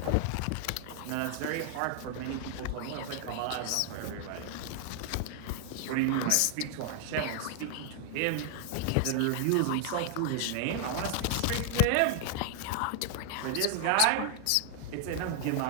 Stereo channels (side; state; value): both; different; correlation 0.00